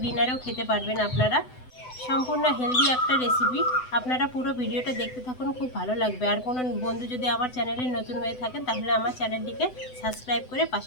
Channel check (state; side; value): late; right; 7.9 ms